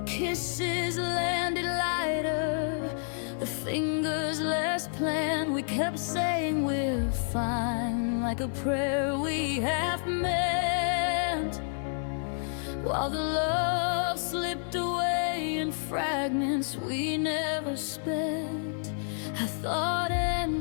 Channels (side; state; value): right; silent; 58 dB below the other